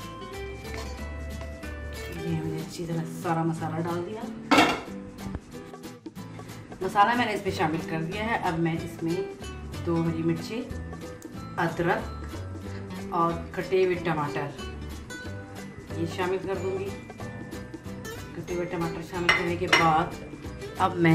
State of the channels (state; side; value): identical; both; correlation 1.00